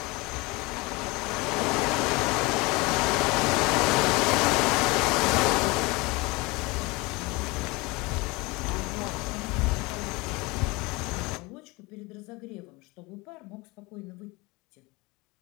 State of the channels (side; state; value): right; quieter; 24.5 dB